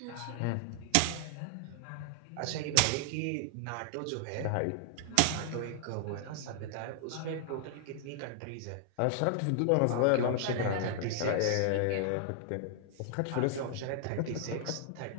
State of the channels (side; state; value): both; different; correlation 0.00